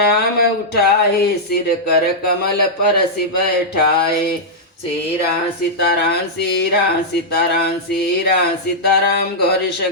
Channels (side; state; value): both; normal; correlation -0.08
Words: उठाए सिर कर कमल परसि बैठाए। सीरा सीताराम सीरा सीताराम सीरा सीताराम गौरी